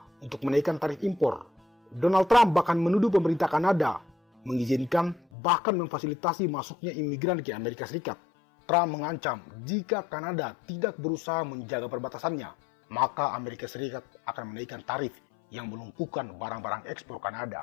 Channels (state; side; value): drops out; right; at 5.2 s